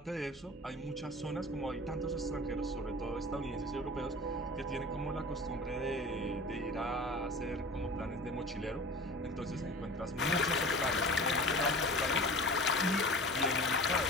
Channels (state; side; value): normal; both; correlation 0.37